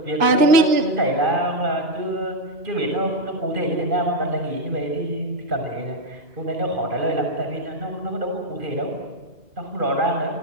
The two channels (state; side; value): late; left; 2.9 ms